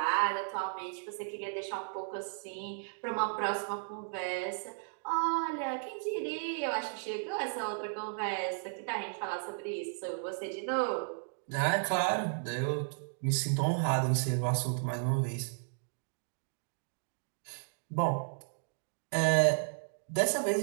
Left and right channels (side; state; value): left; silent; digital silence